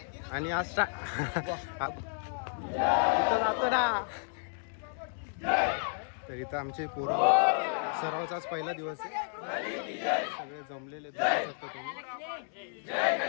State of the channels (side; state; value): right; silent; 56 dB below the other